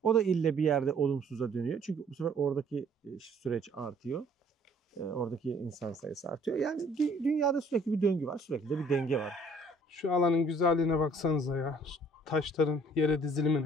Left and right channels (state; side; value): normal; both; correlation 0.58